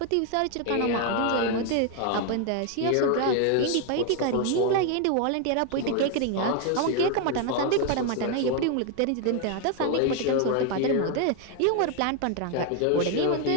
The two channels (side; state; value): both; different; correlation 0.01